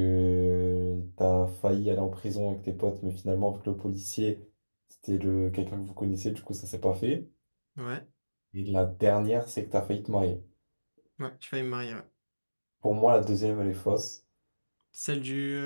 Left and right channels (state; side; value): inverted; both; correlation -1.00